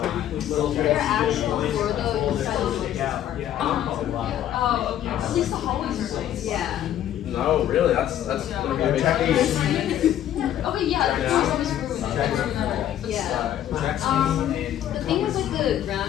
they're actual for the inside of the Oh, okay. At least the hallways are nice. yeah. No, really, that's gonna be a big piece. Okay, yeah, the doors always ruined. Yeah. The thing is like the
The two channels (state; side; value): quieter; right; 11.4 dB